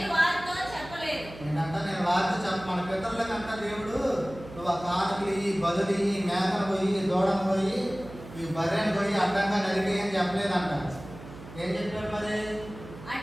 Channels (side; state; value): right; noise; hum, 15 dB below the sound